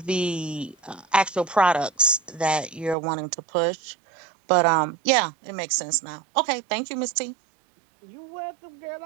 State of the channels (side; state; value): left; drops out; at 3.0 s